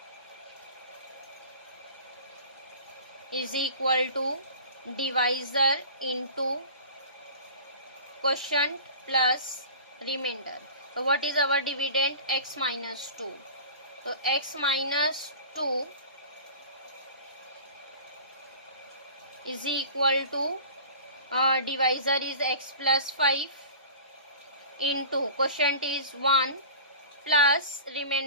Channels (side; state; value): both; inverted; correlation -0.40